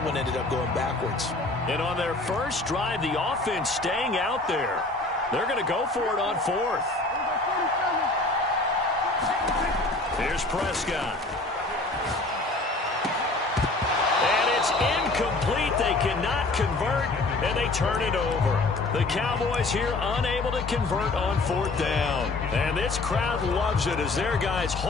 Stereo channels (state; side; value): quieter; right; 3.1 dB